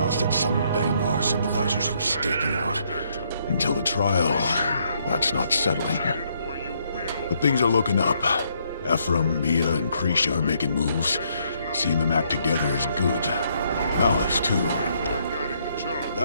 that some Bangar sympathizers were staking out. Until the trial, that's not settling. But things are looking up. Ephraim, Mia, and Krisha are making moves. Seeing them act together is good. Malice, too.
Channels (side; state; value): both; inverted; correlation -0.71